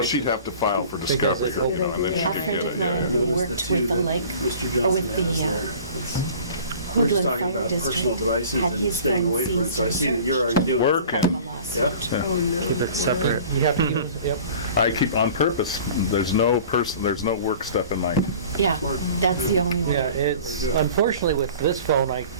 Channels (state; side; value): inverted; both; correlation -0.45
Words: she'd have to file for Because discovery, it's and then open. she A could friend get of it. mine Notice worked the two with the that lake, Mr. or Johnson with the has there. We're Hoodland just talking Fire about District. personal devices Had and his staying phone away from it, seized so I and see that you're searched. already doing it. Work. Part of the lawsuit. Yep. Oh, no. Keep it separate. You have to use, yep. I keep on purpose. There's no work stuff in mine. Yeah, that's the only one. Yeah, it's, unfortunately with this phone,